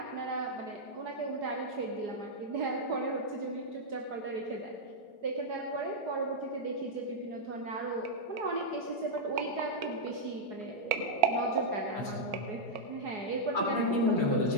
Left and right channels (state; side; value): late; left; 4.8 ms